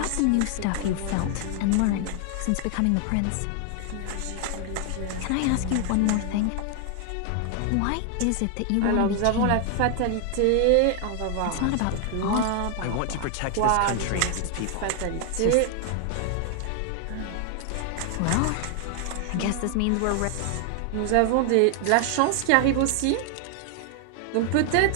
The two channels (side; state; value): both; different; correlation 0.00